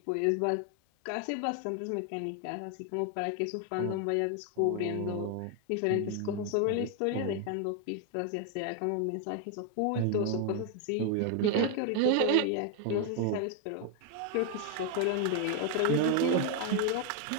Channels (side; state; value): both; different; correlation 0.00